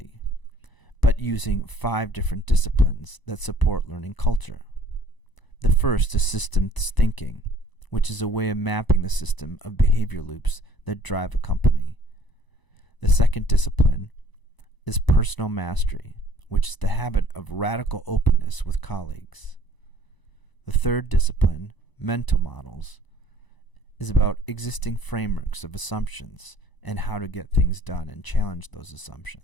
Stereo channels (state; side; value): late; right; 1.0 ms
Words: but using 5 different disciplines that support learning culture. The first is systems thinking, which is a way of mapping the system of behavior loops that drive a company. The second discipline is personal mastery, which is the habit of radical openness with colleagues. The third discipline, mental models, is about existing frameworks of assumptions and how to get things done and challenge those